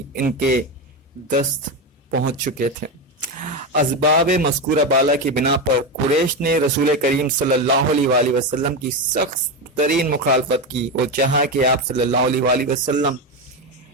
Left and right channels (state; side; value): normal; both; correlation 0.14